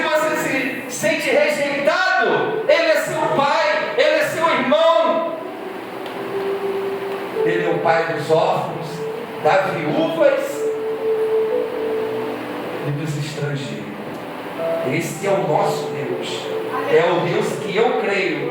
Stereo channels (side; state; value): both; identical; correlation 1.00